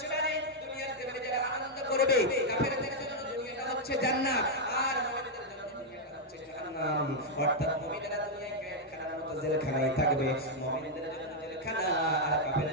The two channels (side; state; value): both; normal; correlation -0.02